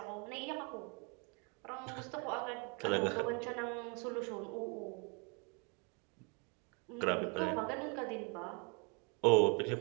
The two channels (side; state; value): left; quieter; 33.9 dB